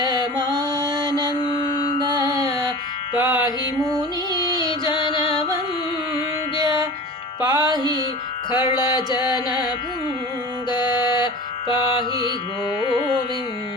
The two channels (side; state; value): both; normal; correlation 0.35